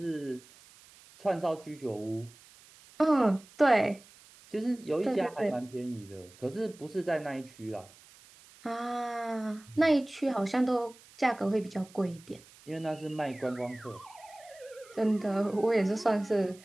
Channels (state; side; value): noise; right; hiss, 24 dB below the sound